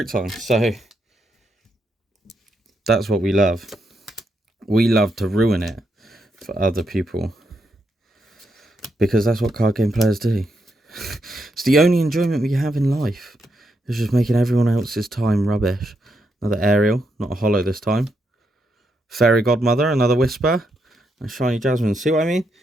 time. So that's what we love. We love to ruin it for other people. Because that's what card game players do. It's the only enjoyment we have in life. It's just making everyone else's time rubbish. Another Ariel, not a holo this time. Fairy Godmother, another Whisper. And Shiny Jasmine. See what I mean?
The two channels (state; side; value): normal; both; correlation 0.81